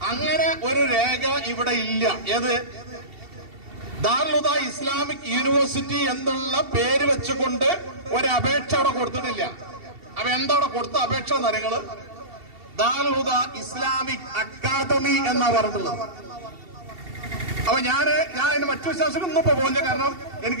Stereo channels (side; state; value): left; late; 2.7 ms